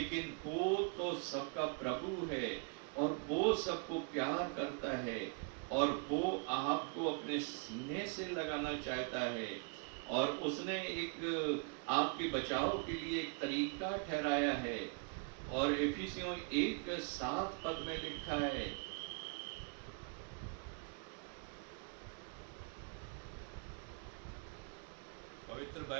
वो तो सबका प्रभु है, और वो सबको प्यार करता है, और वो आपको अपने सीने से लगाना चाहता है। और उसने एक आपके बचाव के लिए एक तरीका ठहराया है। और इफिसियों 1:7 पद में लिखा है, पवित्र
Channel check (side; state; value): left; quieter; 37.3 dB